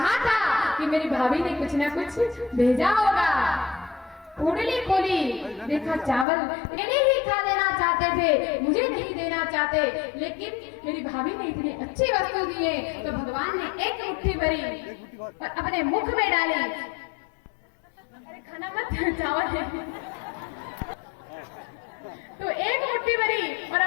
था कि मेरी भाभी ने कुछ ना कुछ भेजा होगा। पोटली खोली, देखा चावल मैंने ही खा देना चाहते थे, मुझे नहीं देना चाहते, लेकिन मेरी भाभी ने इतनी अच्छी वस्तु दी है तो भगवान ने एक मुट्ठी भरी और अपने मुख में डाली। अरे खाना मत, चावल तो एक मुट्ठी भरी और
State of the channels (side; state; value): right; drops out; at 6.2 s